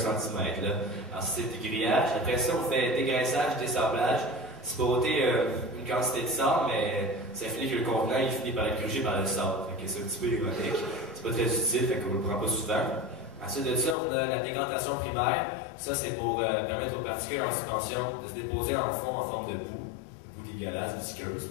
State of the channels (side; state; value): right; drops out; at 14.0 s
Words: Alors, c'est le dégrillage. Après ça, on fait dégraissage, désablage. C'est pour ôter une quantité de sable, mais ça finit que le contenant il finit par être grugé par le sable. C'est un petit peu ironique. C'est pas très utile, fait qu'on ne le prend pas souvent. Ensuite de ça, on a la décantation primaire. Ça, c'est pour permettre aux particules en suspension de se déposer en fond en forme de boue dégueulasse, visqueuse,